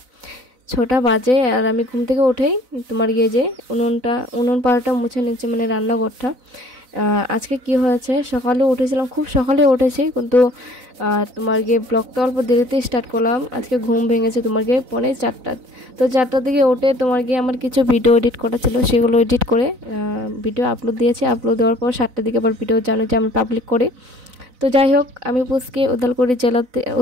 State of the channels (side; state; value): left; late; 4.0 ms